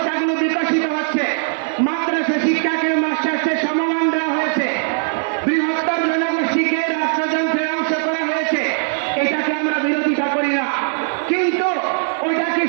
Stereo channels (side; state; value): left; silent; 62 dB below the other